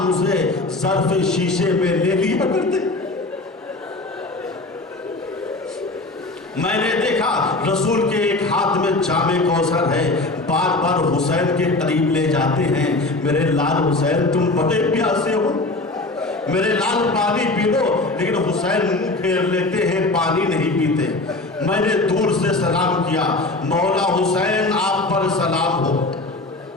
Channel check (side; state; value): right; quieter; 3.0 dB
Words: اسے ظرف شیشے میں لے لیا کرتے۔ میں نے دیکھا رسول کے ایک ہاتھ میں جام کوثر ہے، بار بار حسین کے قریب لے جاتے ہیں، میرے لال حسین تم بڑے پیاسے ہو، میرے لال پانی پی لو، لیکن حسین منہ پھیر لیتے ہیں، پانی نہیں پیتے۔ میں نے دور سے سلام کیا، مولا حسین آپ پر سلام ہو۔